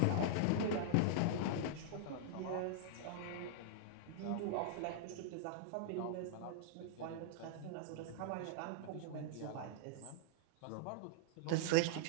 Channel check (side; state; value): both; different; correlation -0.02